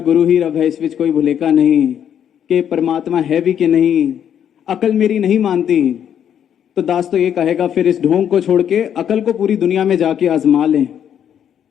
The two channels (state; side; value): quieter; right; 9.2 dB